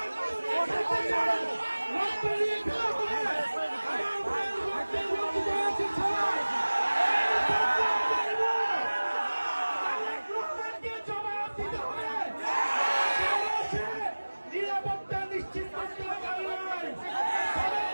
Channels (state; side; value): inverted; both; correlation -1.00